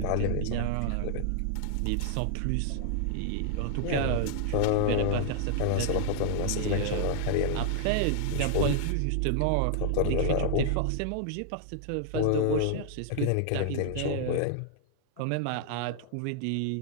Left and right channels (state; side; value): different; both; correlation -0.01